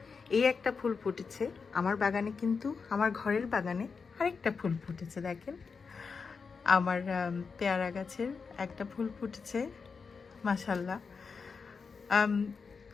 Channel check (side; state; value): right; quieter; 5.2 dB